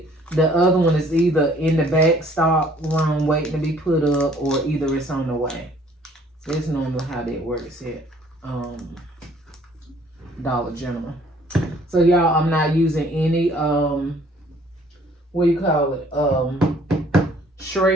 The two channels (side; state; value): both; normal; correlation 0.58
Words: the other one is either in the back stock room waiting to be put up. Or either it's on the way. That's normally how that works at Dollar General. So y'all, I'm not using any